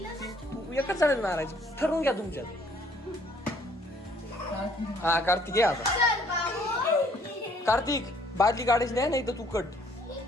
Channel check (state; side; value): normal; both; correlation 0.61